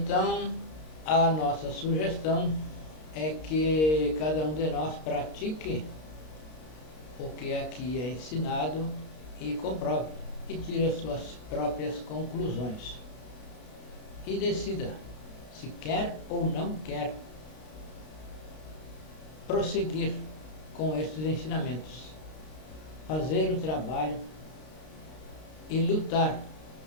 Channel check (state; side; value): late; right; 32 ms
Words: a nossa sugestão é que cada um de nós pratique o que aqui é ensinado e comprove e tire as suas próprias conclusões e decida se quer ou não quer prosseguir com estes ensinamentos, fazer o trabalho e lutar